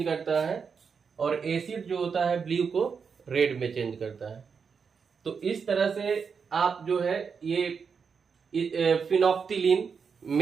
करता है और एसिड जो होता है ब्लू को रेड में चेंज करता है। तो इस तरह से आप जो है ये फिनोक्सिलिन,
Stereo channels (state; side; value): quieter; left; 6.0 dB